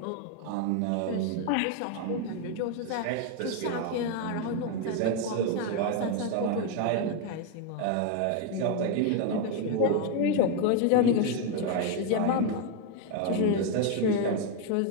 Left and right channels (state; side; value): different; both; correlation 0.01